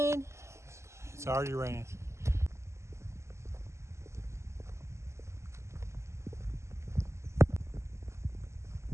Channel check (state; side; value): late; left; 0.13 ms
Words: It's already raining.